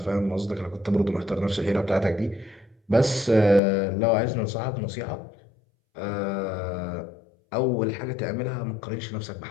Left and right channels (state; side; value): drops out; right; at 3.6 s